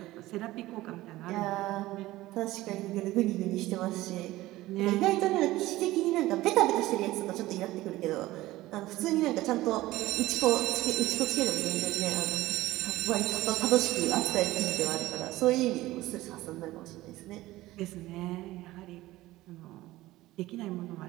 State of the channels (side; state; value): left; quieter; 17.3 dB